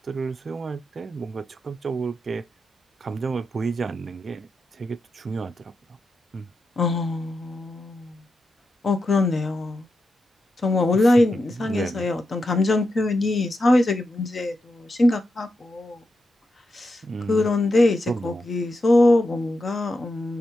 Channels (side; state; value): both; normal; correlation 0.87